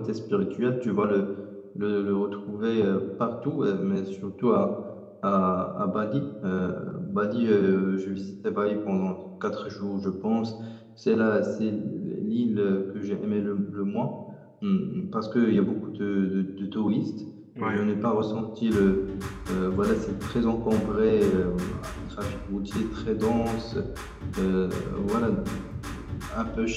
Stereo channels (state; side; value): identical; both; correlation 1.00